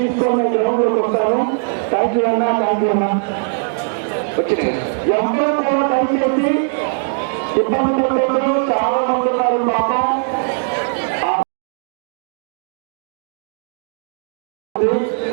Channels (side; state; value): left; silent; 67 dB below the other